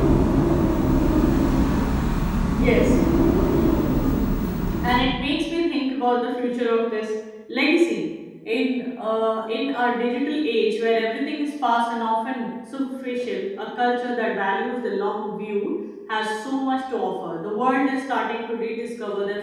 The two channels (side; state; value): both; identical; correlation 1.00